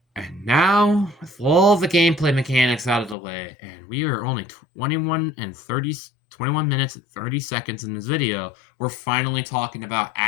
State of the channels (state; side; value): drops out; right; at 3.2 s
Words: And now, with all the gameplay mechanics out of the way, and we are only 21 minutes and 30 seconds in this video, we're finally talking about